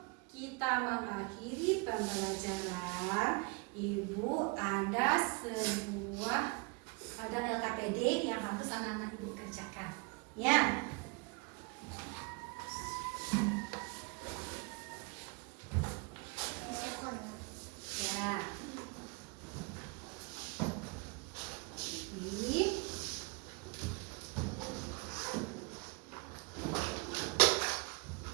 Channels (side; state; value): left; quieter; 30.3 dB